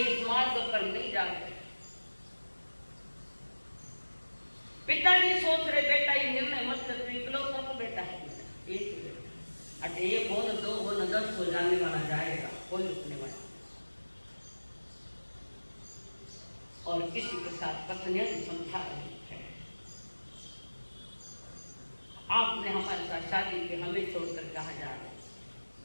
इस मार्ग पर नहीं जाते। पिताजी सोच रहे बेटा ये निर्णय मत कर, इकलौता तो बेटा है, एक ही बेटा। अरे एक हो न, दो हो न, 10 हो, जाने वाला जाएगा, कोई रुकने वाला। और किसी के साथ पत्नियां भी समझा रही है, आपने हमारे साथ शादी की, हमें छोड़कर कहाँ जा रहे?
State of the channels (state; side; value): inverted; both; correlation -1.00